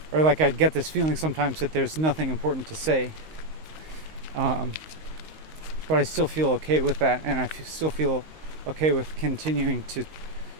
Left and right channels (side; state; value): left; late; 19 ms